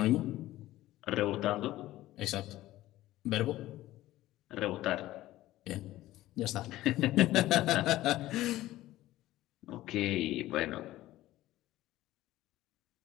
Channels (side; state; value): right; quieter; 15.8 dB